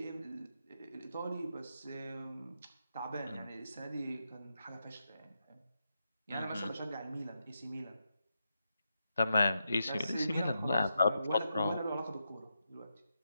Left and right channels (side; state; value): both; inverted; correlation -0.85